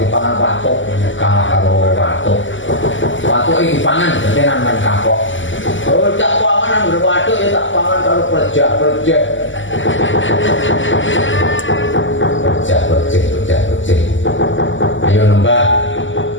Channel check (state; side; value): late; right; 0.55 ms